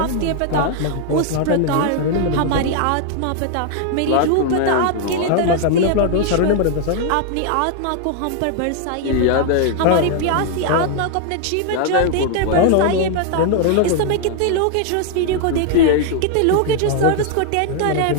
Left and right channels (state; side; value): different; both; correlation 0.00